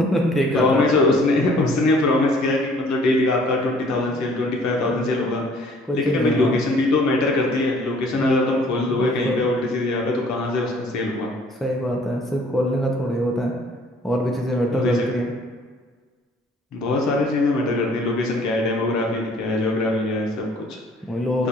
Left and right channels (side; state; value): both; normal; correlation 0.57